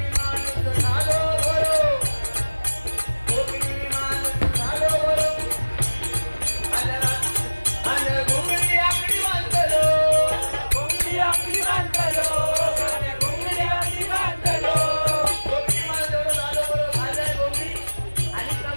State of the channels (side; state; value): both; inverted; correlation -1.00